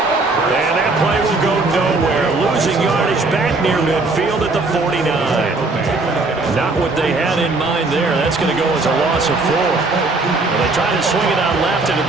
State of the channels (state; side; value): quieter; left; 3.4 dB